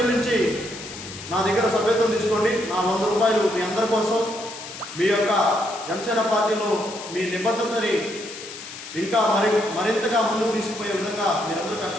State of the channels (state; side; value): noise; left; hiss, 12 dB below the sound